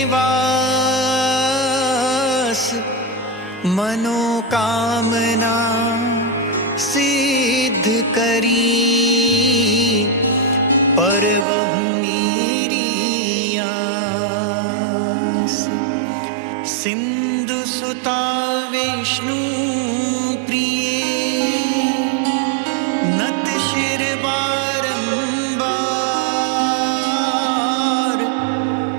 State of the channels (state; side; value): drops out; left; at 11.5 s